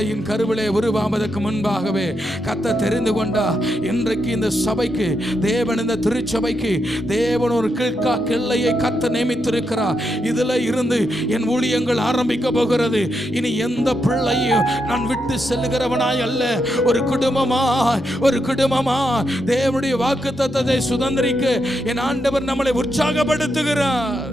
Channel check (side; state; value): both; normal; correlation 0.82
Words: கருவிலே உருவாவதற்கு முன்பாகவே கர்த்தர் தெரிந்து கொண்டா. இன்றைக்கு இந்த சபைக்கு தேவன், இந்த திருச்சபைக்கு தேவன் ஒரு கிழ்கா கிள்ளையை கர்த்தர் நியமித்திருக்கிறார். இதுல இருந்து என் ஊழியங்கள் ஆரம்பிக்க போகிறது. இனி எந்த பிள்ளையும் நான் விட்டு செல்லுகிறவனாய் அல்ல, ஒரு குடும்பமா தேவனுடைய வாக்குத்தத்தத்தை சுதந்திரிக்க என் ஆண்டவர் நம்மளை உற்சாகப்படுத்துகிறார்.